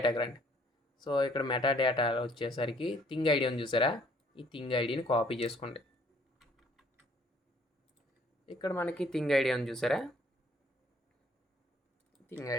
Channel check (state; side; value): normal; both; correlation 0.62